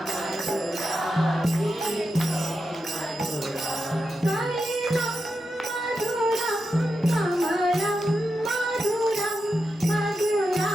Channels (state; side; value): normal; both; correlation 0.88